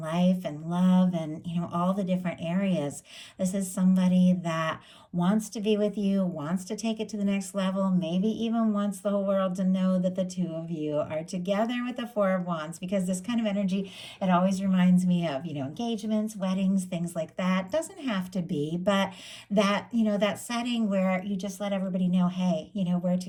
life and love and, all the different areas. This is somebody that wants to be with you, wants to take it to the next level, maybe even wants the whole world to know that the two of you are together with the 4 of Wands, because this kind of energy, it always reminds me of, engagements, weddings, things like that. Doesn't have to be, but that, that setting where you just let everybody know, hey, we're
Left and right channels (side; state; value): both; identical; correlation 1.00